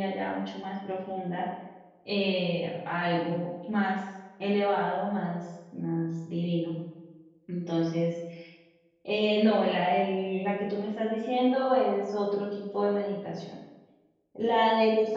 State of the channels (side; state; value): both; identical; correlation 1.00